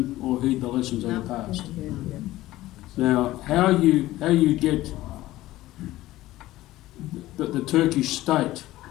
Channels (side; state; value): right; quieter; 16.4 dB